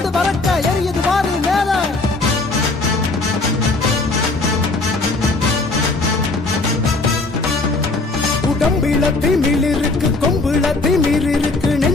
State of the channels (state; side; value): quieter; right; 3.3 dB